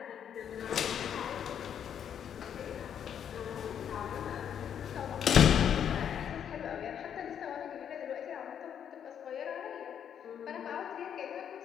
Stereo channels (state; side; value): quieter; right; 8.8 dB